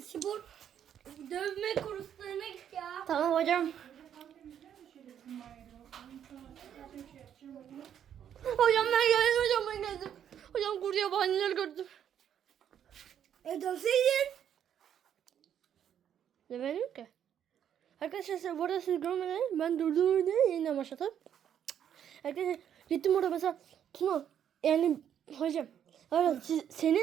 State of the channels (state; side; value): quieter; left; 9.4 dB